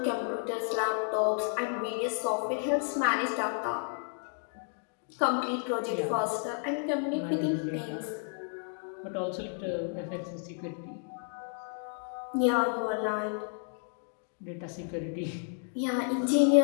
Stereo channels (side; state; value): right; silent; 57 dB below the other